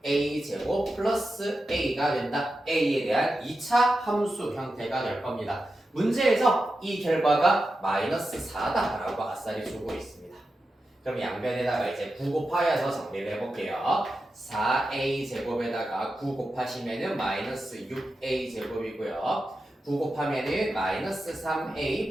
2a 제곱 플러스 a가 된다. a에 대한 2차 함수 형태가 될 겁니다. 문제에서 이 결과가 마이너스 4다라고 아싸리 주고 있습니다. 그럼 양변에다가 이제 9 곱하여서 정리를 해볼게요. 4a 제곱에다가 9 곱하시면은 마이너스 6a 제곱이고요. 9 곱하면은 마이너스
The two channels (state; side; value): normal; both; correlation 0.91